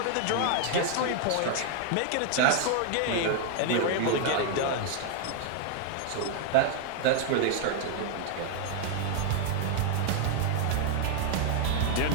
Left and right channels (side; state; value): both; different; correlation 0.00